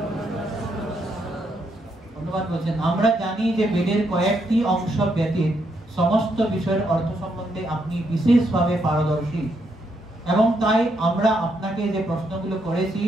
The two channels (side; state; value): both; normal; correlation 0.77